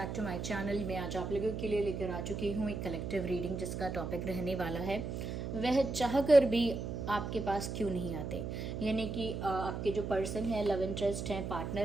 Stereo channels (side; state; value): right; noise; hum, 4 dB below the sound